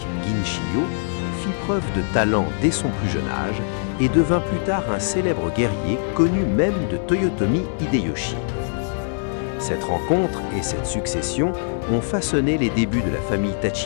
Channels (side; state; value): right; silent; digital silence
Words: Ginchiyo, fit preuve de talent dès son plus jeune âge et devint plus tard un célèbre guerrier connu même de Toyotomi Hideyoshi. Cette rencontre et cette succession ont façonné les débuts de la famille